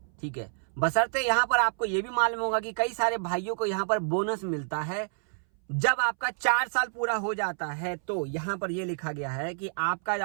ठीक है, बशर्ते यहाँ पर आपको ये भी मालूम होगा कि कई सारे भाइयों को यहाँ पर बोनस मिलता है जब आपका 4 साल पूरा हो जाता है। तो यहाँ पर ये लिखा गया है कि आपका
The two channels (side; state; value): left; silent; 59 dB below the other